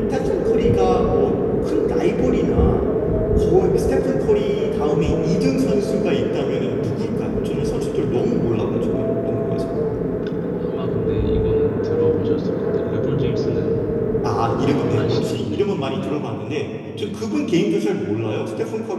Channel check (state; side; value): identical; both; correlation 1.00